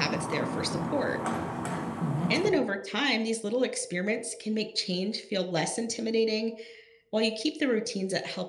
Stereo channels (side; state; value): both; identical; correlation 1.00